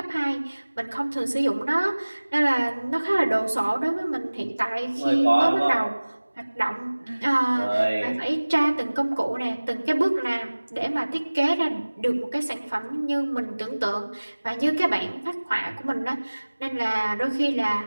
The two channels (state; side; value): inverted; both; correlation -1.00